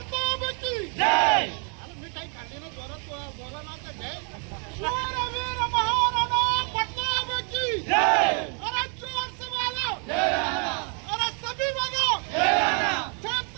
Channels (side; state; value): left; quieter; 38.8 dB